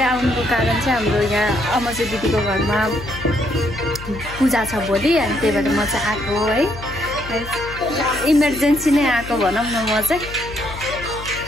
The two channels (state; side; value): noise; left; hum, 12 dB below the sound